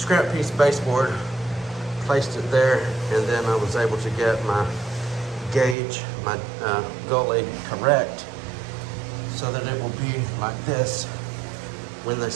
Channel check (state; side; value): drops out; left; at 5.8 s